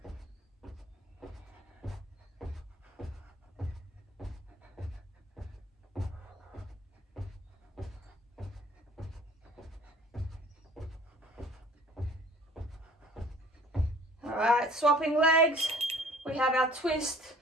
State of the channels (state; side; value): normal; both; correlation 0.51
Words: All right, swapping legs. We have our twist